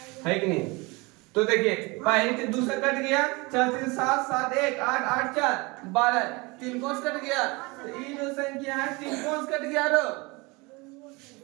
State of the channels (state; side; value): quieter; left; 25.8 dB